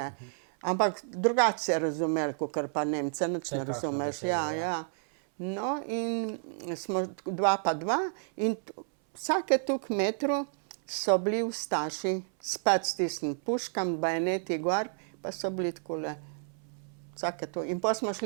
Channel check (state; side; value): silent; left; 57 dB below the other